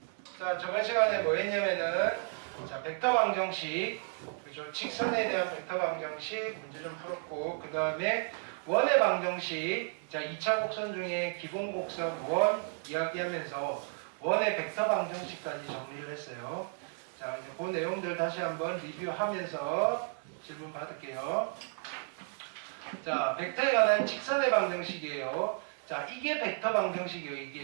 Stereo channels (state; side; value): silent; left; 56 dB below the other